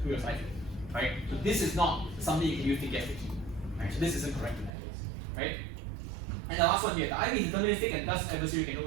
through your cipher. Right? So this is not something you can use to guess the key. Right? So this isn't correct in that case. Right? And the last one here, the IV is deterministic and thus adversary can know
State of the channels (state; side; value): drops out; left; at 4.7 s